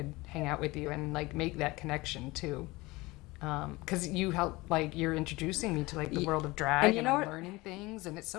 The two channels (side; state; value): right; quieter; 21.7 dB